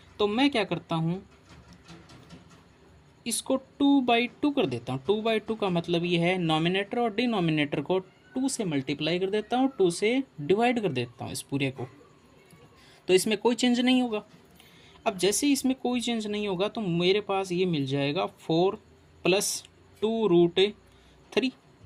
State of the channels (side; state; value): both; identical; correlation 1.00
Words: तो मैं क्या करता हूँ, इसको 2/2 कर देता हूँ। 2/2 का मतलब ये है नॉमिनेटर और डिनोमिनेटर को 2 से मल्टीप्लाई कर देता हूँ, 2 से डिवाइड कर देता हूँ इस पूरे को, तो इसमें कोई चेंज नहीं होगा। अब जैसे इसमें कोई चेंज नहीं होगा तो मेरे पास ये मिल जाएगा 4 प्लस